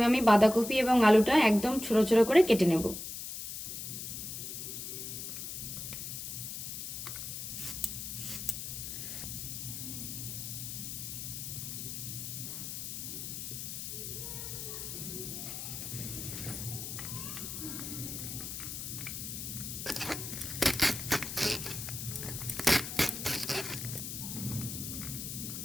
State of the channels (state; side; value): noise; left; hiss, 6 dB below the sound